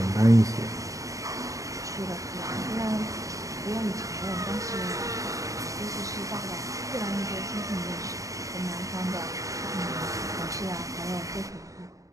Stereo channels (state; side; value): late; left; 0.16 ms